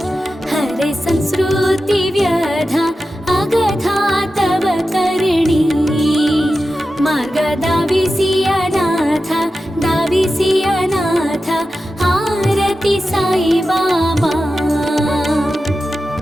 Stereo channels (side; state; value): both; normal; correlation 0.92